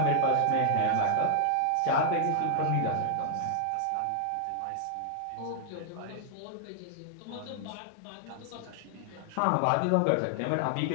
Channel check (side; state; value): both; different; correlation -0.01